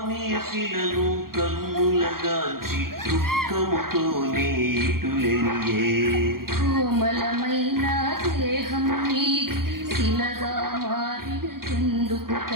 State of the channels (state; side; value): late; left; 0.92 ms